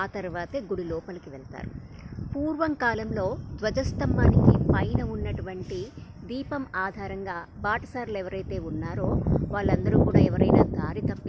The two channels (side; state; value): both; identical; correlation 1.00